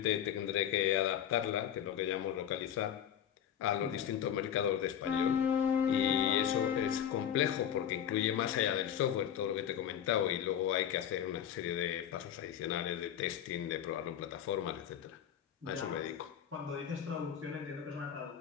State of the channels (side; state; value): right; quieter; 9.6 dB